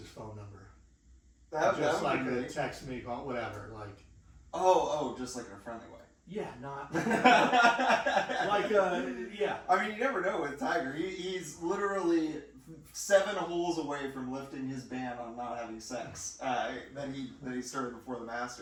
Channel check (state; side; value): identical; both; correlation 1.00